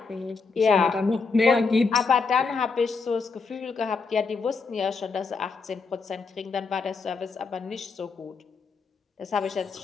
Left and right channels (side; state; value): right; quieter; 4.6 dB